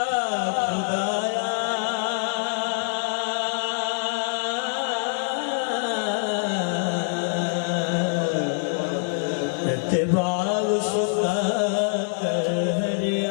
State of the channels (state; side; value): silent; right; digital silence